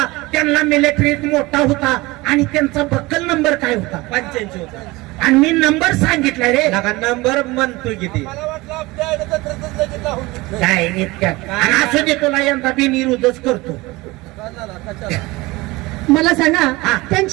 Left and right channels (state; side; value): quieter; left; 21.6 dB